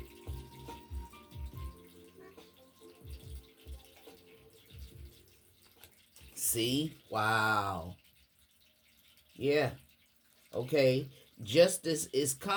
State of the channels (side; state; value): both; identical; correlation 1.00